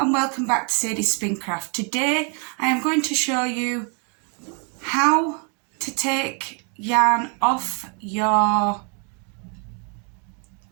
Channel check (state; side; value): quieter; left; 38.9 dB